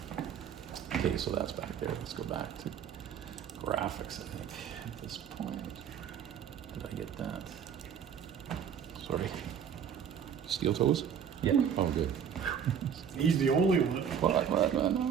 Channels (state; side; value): quieter; left; 7.9 dB